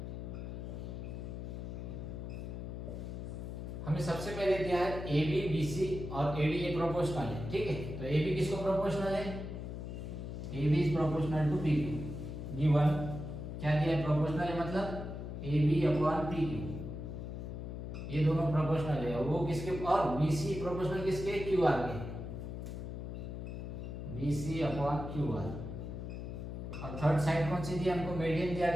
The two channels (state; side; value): noise; left; hum, 7 dB below the sound